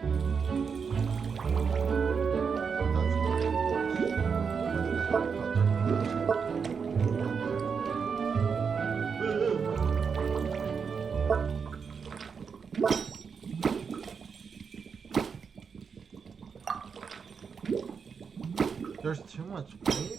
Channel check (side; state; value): left; quieter; 6.0 dB